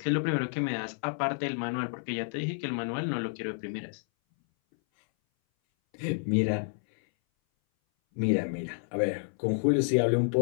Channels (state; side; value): silent; right; 58 dB below the other